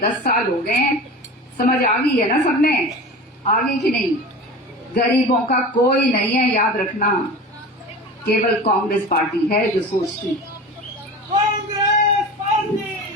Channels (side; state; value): both; normal; correlation 0.33